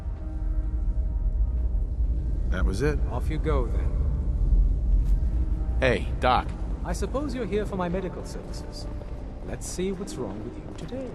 That was it. Off you go, then. Hey, Doc. I suppose you're here for my medical services. Let's see what's wrong with you today.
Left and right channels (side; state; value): both; identical; correlation 1.00